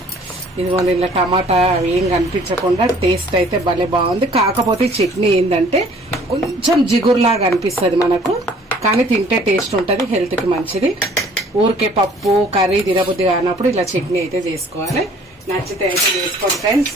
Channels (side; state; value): both; normal; correlation 0.55